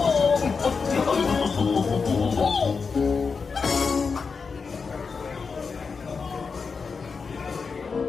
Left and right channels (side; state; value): right; quieter; 5.1 dB